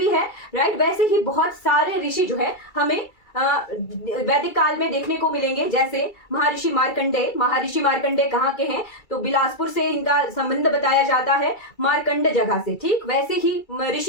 है। राइट, वैसे ही बहुत सारे ऋषि जो है हमें वैदिक काल में देखने को मिलेंगे, जैसे महर्षि मार्कंडेय। महर्षि मार्कंडेय कहाँ के हैं? तो बिलासपुर से इनका संबंध बताया जाता है, मार्कंड जगह से। ठीक, वैसे ही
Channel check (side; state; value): right; late; 2.3 ms